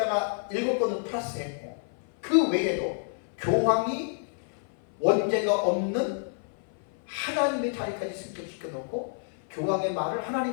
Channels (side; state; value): right; silent; 56 dB below the other